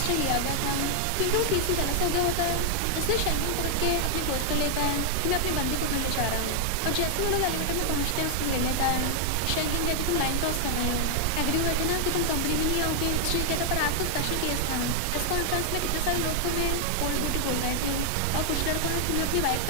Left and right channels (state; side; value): different; both; correlation 0.00